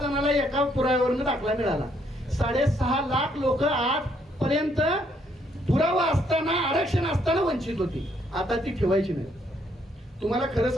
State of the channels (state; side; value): normal; both; correlation 0.71